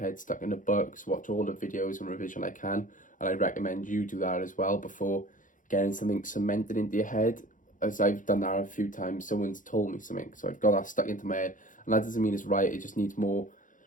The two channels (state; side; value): late; right; 0.38 ms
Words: stuck in the books, watch all the videos and revision I can. And I recommend you do that as well before getting something cemented into your head. As I've done that a few times, someone's told me something, so I've got that stuck into my head. And that doesn't mean it's right. It just needs more.